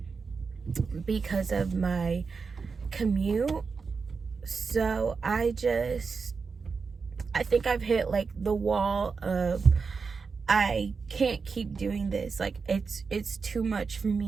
because of my commute. So I think I've hit like the wall of I can't keep doing this. Like, it's too much for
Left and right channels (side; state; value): left; quieter; 5.0 dB